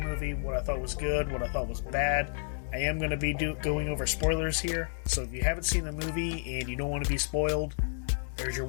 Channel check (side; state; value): right; silent; digital silence